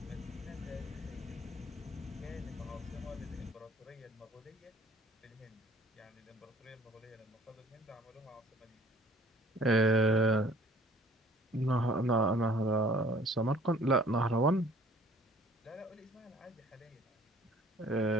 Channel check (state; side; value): normal; both; correlation 0.54